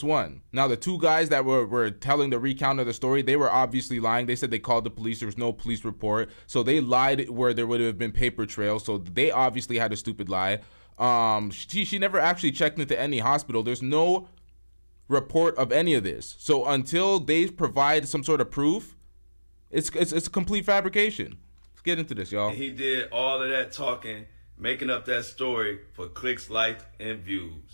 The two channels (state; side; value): inverted; both; correlation -1.00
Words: one. Now, the 2 guys that were telling the recount of the story, they were obviously lying. They said they called the police. There was no police report. So they lied where there would have been paper trails. So they obviously had a stupid lie. She never actually checked into any hospital. There's no report of any of this. So until they provide some sort of proof, it's a complete fabrication. Let's get into this, y'all. And he did all of that talking, making up that story for clicks, likes, and